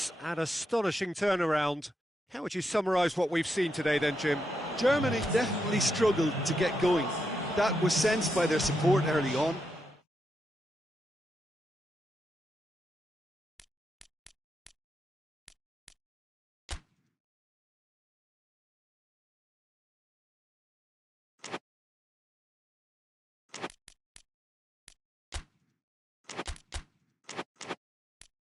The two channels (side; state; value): both; normal; correlation 0.83